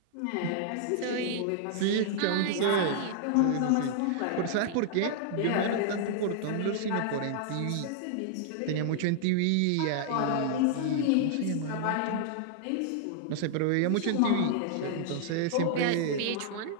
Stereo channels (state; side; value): different; both; correlation -0.01